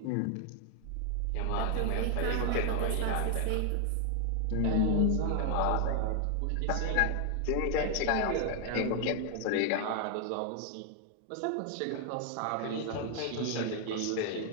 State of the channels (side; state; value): both; different; correlation 0.00